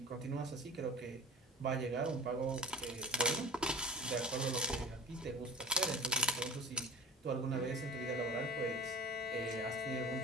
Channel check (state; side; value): normal; both; correlation 0.38